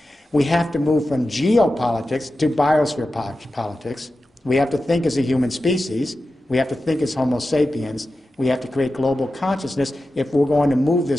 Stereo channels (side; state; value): both; normal; correlation 0.92